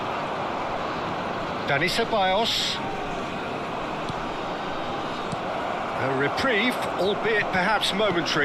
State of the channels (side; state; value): both; identical; correlation 1.00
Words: Dani Ceballos. A reprieve, albeit perhaps